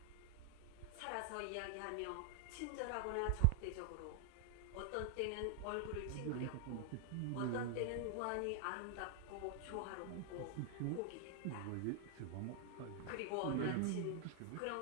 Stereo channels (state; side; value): different; both; correlation 0.00